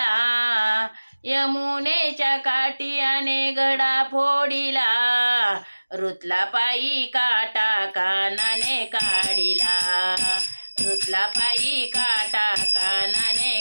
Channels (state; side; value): inverted; both; correlation -1.00